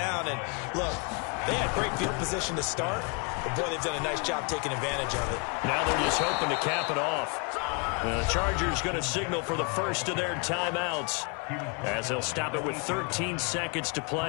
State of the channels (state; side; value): quieter; right; 34.9 dB